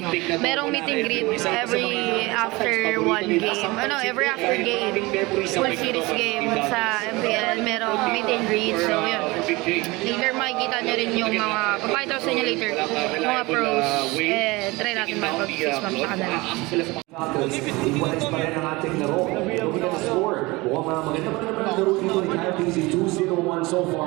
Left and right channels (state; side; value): quieter; left; 22.8 dB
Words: merong meet and greet every after one game. Every after game. Full series game sa MPL, merong meet and greet. So, yun. Later, makikita nyo rin yung mga, papakita ko sa inyo later, yung mga pros. And try natin makipag-face map sa kanila. Iwalis pa rin ang ating laro. Looking at the score. Mukhang maganda pa naman ang laro dito ni Kyle Casey. 2-0-1 so